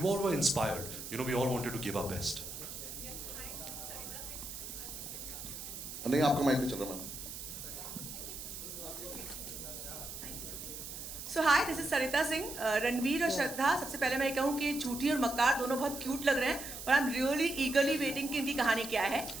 were inspired. You know, we all wanted to give our best. नहीं आपका mic नहीं चल रहा ma'am. So hi, this is Sarita Singh. Ranveer और श्रद्धा, सबसे पहले मैं ये कहूँ कि झूठी और मक्कार दोनों बहुत क्यूट लग रहे हैं और आई एम रियली ईगरली वेटिंग कि इनकी कहानी क्या है.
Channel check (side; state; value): right; noise; hiss, 9 dB below the sound